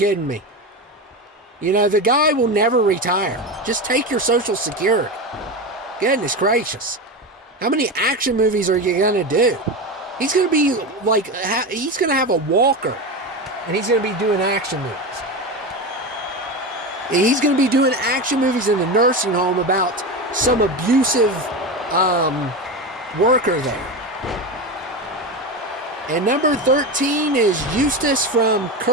me. You know, the guy will never retire. Just take your Social Security. Goodness gracious. How many action movies are you going to do? He's going to be like, he's going to have a walker, and he's going to be doing action movies. He's going to be doing action movies in the nursing home about some abusive worker there. And number 13 is Eustace from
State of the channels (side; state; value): both; normal; correlation 0.20